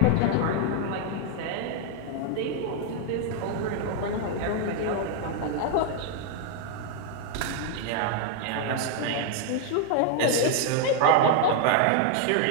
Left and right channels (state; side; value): different; both; correlation 0.00